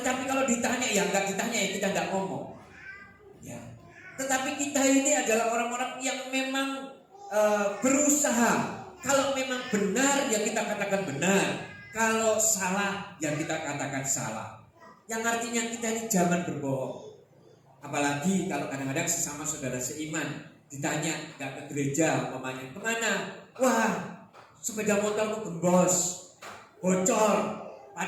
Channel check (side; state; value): both; identical; correlation 1.00